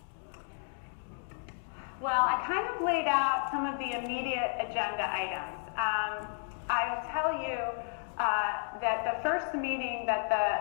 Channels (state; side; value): silent; right; 56 dB below the other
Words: Well, I kind of laid out some of the immediate agenda items. I'll tell you that the first meeting that